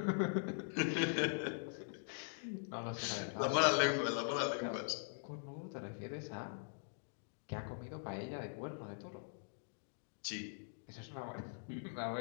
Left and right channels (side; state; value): right; silent; digital silence